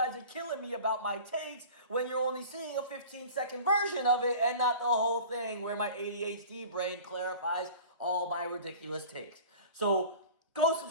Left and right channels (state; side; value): inverted; both; correlation -0.41